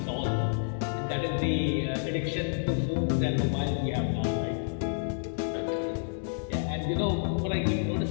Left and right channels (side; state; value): right; silent; digital silence